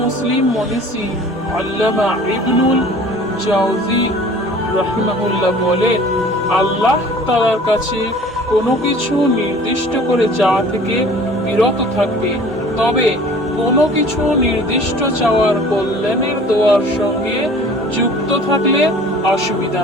মুসলিম মনীষী আল্লামা ইবনুল জাওজি রাহিমাহুল্লাহ বলেন, আল্লাহ তাআলার কাছে কোনো কিছু নির্দিষ্ট করে চাওয়া থেকে বিরত থাকবে, তবে কোনো কিছু নির্দিষ্ট চাওয়ার কল্যাণের দোয়ার সঙ্গে যুক্ত থাকলে অসুবিধা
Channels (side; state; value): both; normal; correlation 0.47